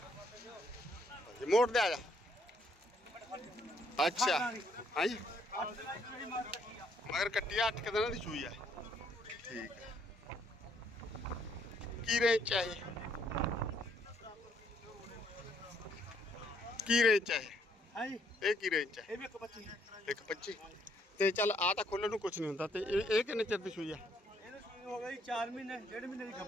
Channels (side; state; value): both; normal; correlation 0.69